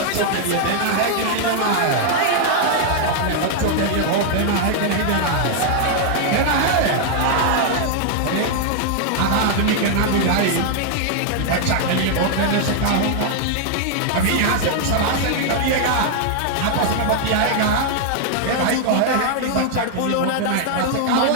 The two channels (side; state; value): both; different; correlation 0.00